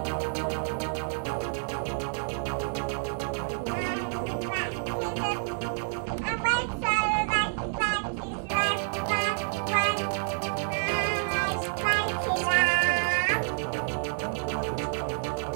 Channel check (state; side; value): silent; left; 59 dB below the other